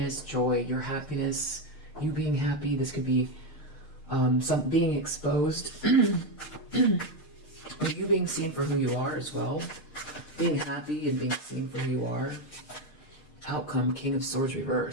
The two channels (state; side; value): late; right; 6.6 ms